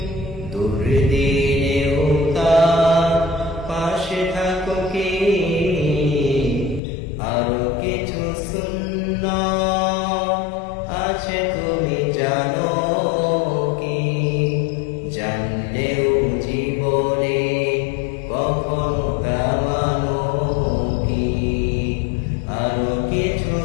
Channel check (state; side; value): drops out; right; at 6.8 s